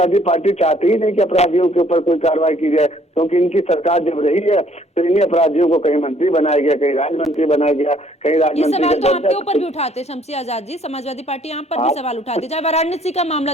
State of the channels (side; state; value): both; normal; correlation 0.62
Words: पार्टी चाहती ही नहीं कि अपराधियों के ऊपर कोई कार्रवाई की जाए, क्योंकि इनकी सरकार जब रही है तो इन्हीं अपराधियों को कहीं मंत्री बनाया गया, कहीं राज्य मंत्री बनाया गया, कहीं राज्य मंत्री सवाल तो आपके ऊपर भी उठाते शमसी आजाद जी, समाजवादी पार्टी यहाँ पर भी सवाल उठाती है। चाहे वाराणसी का मामला